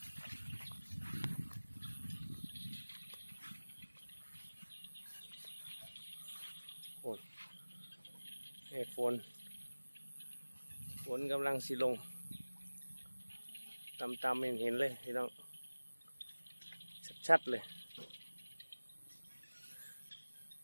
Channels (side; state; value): both; inverted; correlation -1.00